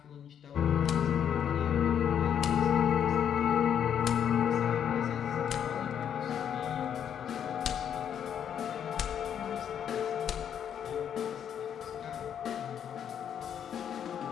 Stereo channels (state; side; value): quieter; right; 8.8 dB